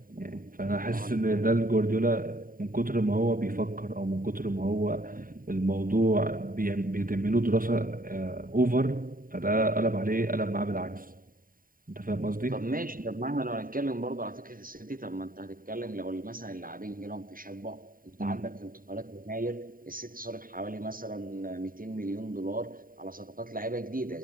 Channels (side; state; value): left; late; 0.41 ms